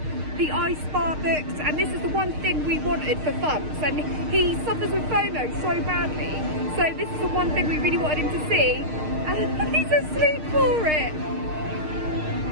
the ice bar books, and this is the one thing we wanted for Bumps, and he suffers with FOMO so badly, so this is the one thing we really wanted him to see, and he's asleep for it.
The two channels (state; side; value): late; left; 6.5 ms